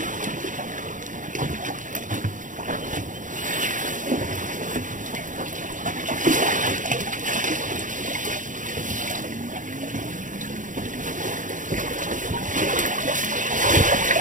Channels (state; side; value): late; left; 0.37 ms